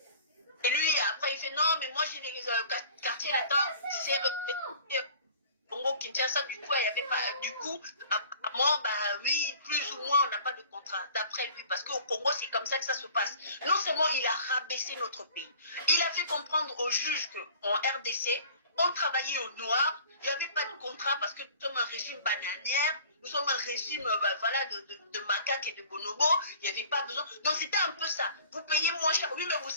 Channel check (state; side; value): inverted; both; correlation -0.48